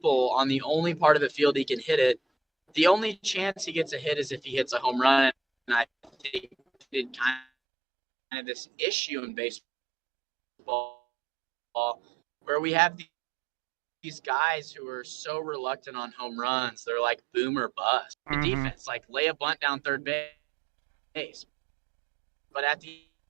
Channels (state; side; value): drops out; left; at 7.5 s